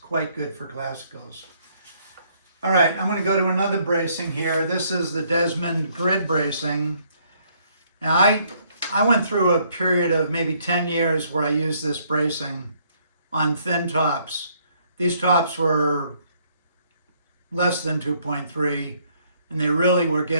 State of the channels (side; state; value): both; inverted; correlation -0.67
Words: good for classicals. All right, I'm going to go to another bracing here. This is the Desmond grid bracing. Now, I went through a period of maybe 10 years where I used this bracing on thin tops. These tops were less than 2.3, and they really were